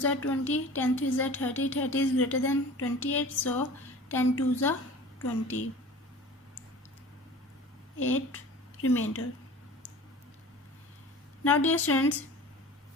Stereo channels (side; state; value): both; normal; correlation 0.40